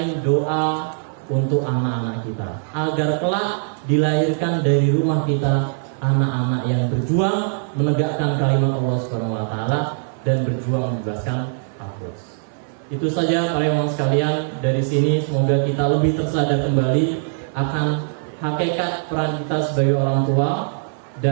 doa untuk anak-anak kita, agar kelak dilahirkan dari rumah kita anak-anak yang berjuang menegakkan kalimat Allah Subhanahu wa taala dan berjuang membebaskan Al-Quds. Itu saja para ikhwan sekalian, dari sini semoga kita lebih tersadar kembali akan hakikat peran kita sebagai orang tua,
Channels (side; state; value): left; silent; 57 dB below the other